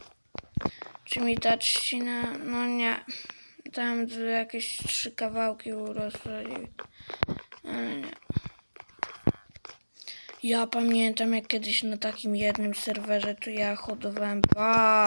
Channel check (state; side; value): inverted; both; correlation -1.00